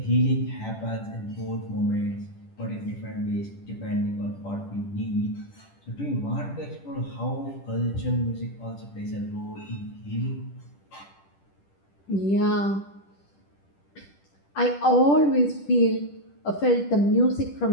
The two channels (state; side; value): late; right; 10 ms